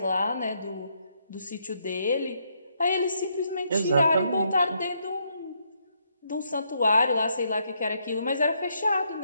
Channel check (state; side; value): inverted; both; correlation -0.75